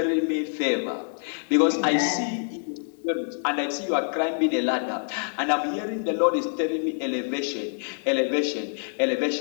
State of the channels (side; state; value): right; silent; digital silence